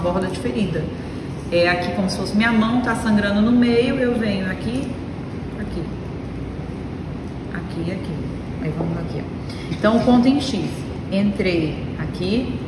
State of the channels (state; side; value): identical; both; correlation 1.00